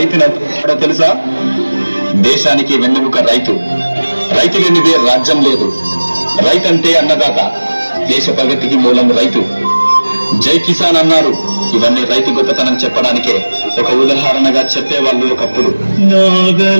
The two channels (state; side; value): inverted; both; correlation -1.00